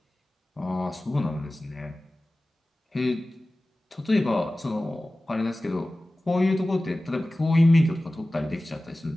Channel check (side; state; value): both; normal; correlation 0.97